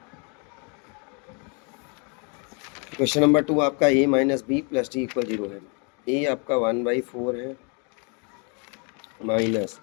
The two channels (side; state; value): right; quieter; 35.5 dB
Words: क्वेश्चन नंबर 2 आपका a minus B plus D equal 0 है। a आपका 1/4 है माइनस,